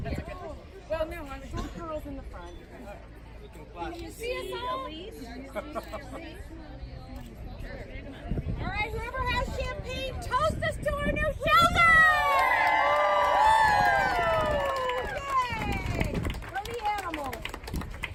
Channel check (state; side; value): identical; both; correlation 1.00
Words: Well, no, I'm short girls in the front. Can you see us all? All right, whoever has champagne, toast us to our new shelter! Yay! From the animals.